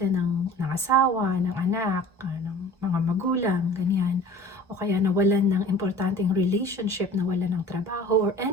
ng asawa, ng anak, ng mga magulang, ganyan, o kaya nawalan ng importanteng relationship, nawalan ng trabaho, or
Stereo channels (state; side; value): normal; both; correlation 0.44